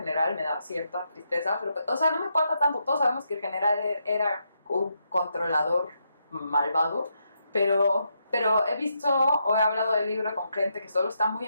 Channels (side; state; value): both; inverted; correlation -0.81